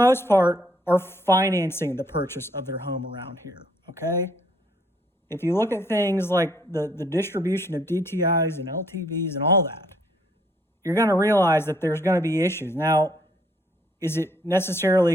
part are financing the purchase of their home around here, okay? If you look at things like the distribution of DTIs and LTVs and all that, you're going to realize that there's going to be issues. Now, is it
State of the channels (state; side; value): normal; both; correlation 0.66